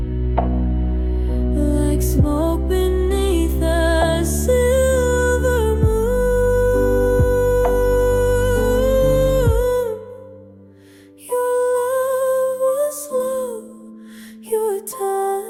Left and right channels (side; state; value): both; identical; correlation 1.00